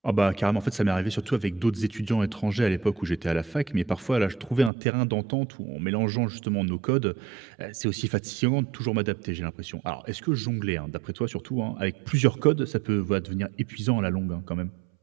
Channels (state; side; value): drops out; left; at 4.7 s